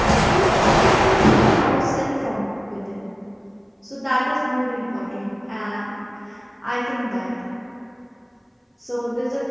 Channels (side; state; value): both; identical; correlation 1.00